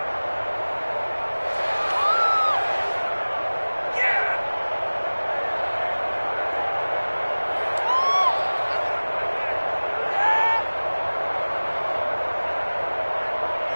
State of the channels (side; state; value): both; inverted; correlation -1.00